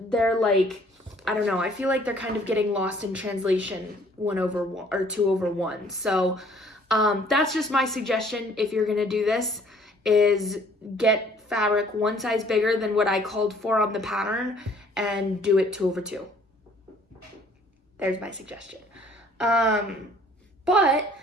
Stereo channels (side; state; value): both; normal; correlation 0.58